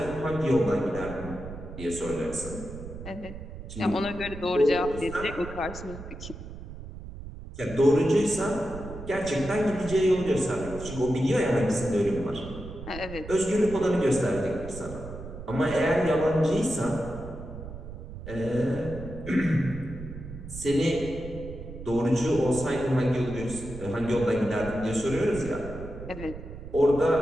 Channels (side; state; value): right; noise; rumble, 12 dB below the sound